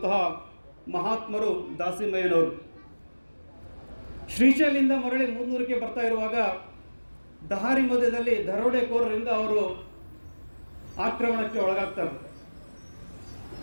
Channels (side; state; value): both; inverted; correlation -1.00